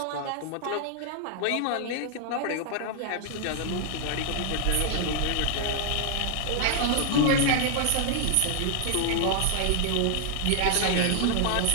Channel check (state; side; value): different; both; correlation 0.00